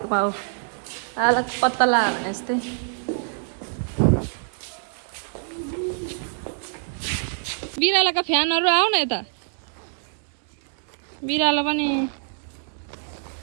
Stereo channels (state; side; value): silent; left; digital silence